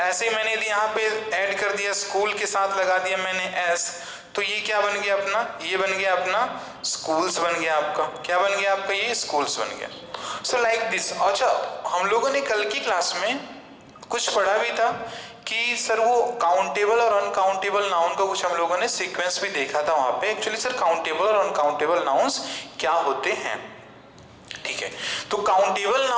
ऐसे ही मैंने यहाँ पे ऐड कर दिया, स्कूल के साथ लगा दिया मैंने S, तो ये क्या बन गया अपना, ये बन गया अपना स्कूल्स बन गया आपका. क्या बन गया आपका, ये स्कूल्स बन गया. So like this. अच्छा, हम लोगों ने कल की क्लास में कुछ पढ़ा भी था कि सर वो काउंटेबल और अनकाउंटेबल नाउन का कुछ हम लोगों ने सीक्वेंस भी देखा था वहां पे. एक्चुअली सर काउंटेबल और अनकाउंटेबल नाउन्स क्या होते हैं. ठीक है. तो काउंटेबल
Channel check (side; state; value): both; identical; correlation 1.00